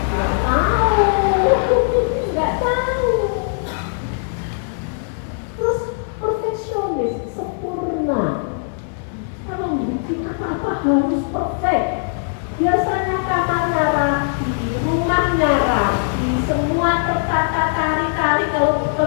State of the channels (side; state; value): right; silent; digital silence